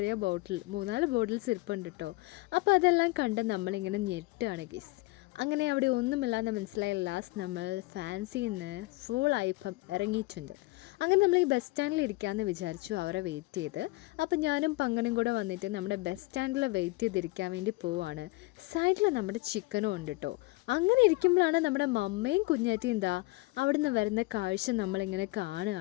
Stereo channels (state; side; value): quieter; right; 22.4 dB